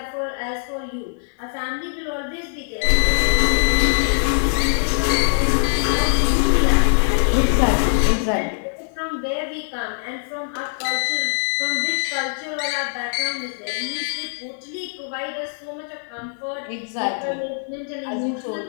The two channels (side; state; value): right; silent; digital silence